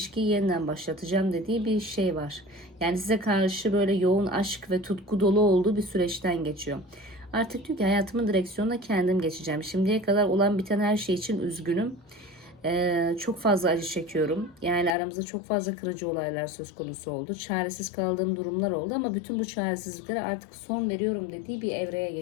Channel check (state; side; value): drops out; right; at 15.0 s